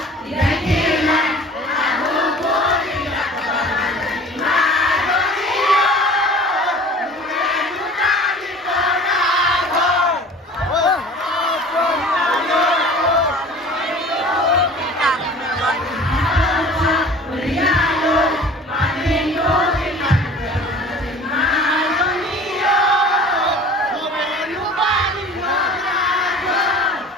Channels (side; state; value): both; normal; correlation 0.44